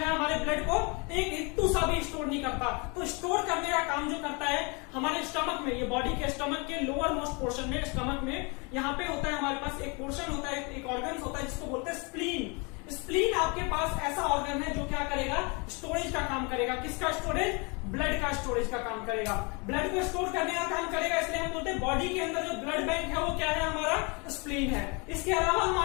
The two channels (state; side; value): quieter; right; 30.9 dB